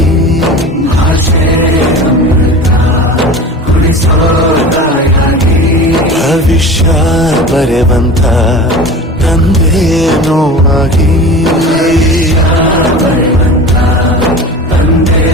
ಭವಿಷ್ಯ ಬರೆವಂತ ತಂದೇನೋ ಆಗಿ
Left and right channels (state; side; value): normal; both; correlation 0.35